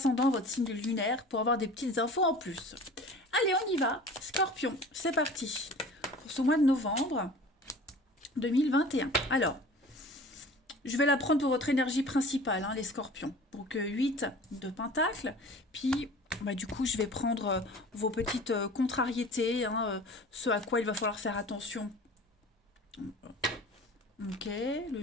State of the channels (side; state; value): both; normal; correlation 0.42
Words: votre signe lunaire, pour avoir des petites infos en plus. Allez, on y va. Scorpion, c'est parti. Pour ce mois de novembre 2021. Alors, je vais la prendre pour votre énergie principale, les scorpions. Donc, 8 de pentacles. Puis, du coup, je vais prendre vos petites contrariétés, ce à quoi il va falloir faire attention. Ok, le